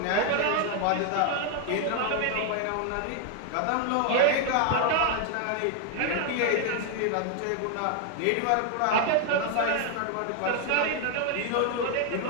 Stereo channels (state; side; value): different; both; correlation 0.00